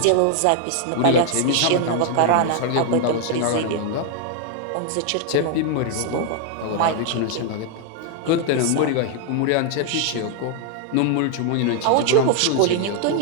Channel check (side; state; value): both; different; correlation 0.00